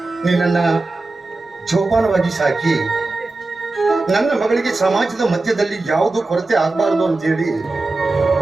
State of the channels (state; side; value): quieter; left; 3.2 dB